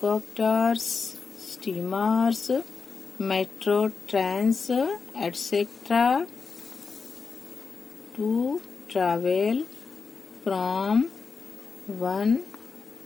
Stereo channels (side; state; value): right; quieter; 5.1 dB